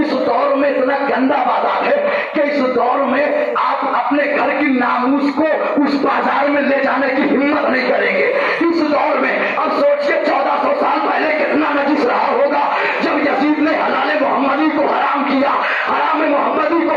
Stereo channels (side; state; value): both; identical; correlation 1.00